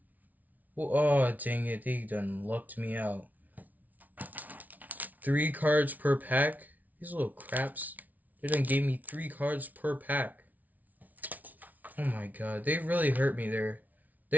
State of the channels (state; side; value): late; left; 0.076 ms